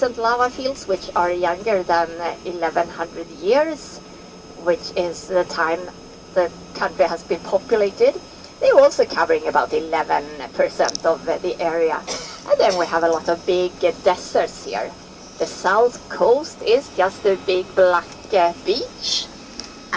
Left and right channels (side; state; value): both; identical; correlation 1.00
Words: lava fields, which are younger than 1100 years, which is the time the country has been populated. They're also covering about 11% of the area. And then we have a lot of big deserts here. The south coast is just a big black beach.